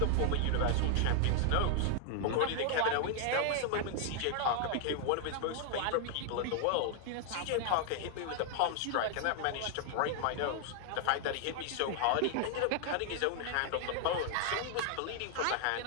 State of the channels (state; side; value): different; both; correlation 0.00